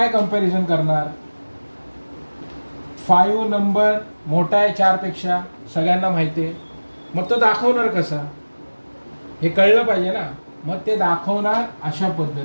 कंपॅरिझन करणार? 5 नंबर मोठा आहे 4 पेक्षा, सगळ्यांना माहिती आहे. मग तो दाखवणार कसा? हे कळलं पाहिजे ना. मग ते दाखवणार अशा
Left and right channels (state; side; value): inverted; both; correlation -1.00